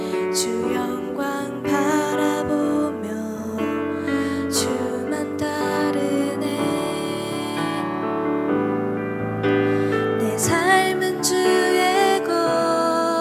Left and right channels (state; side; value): identical; both; correlation 1.00